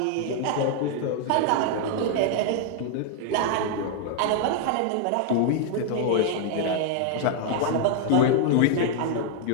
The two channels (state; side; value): different; both; correlation 0.00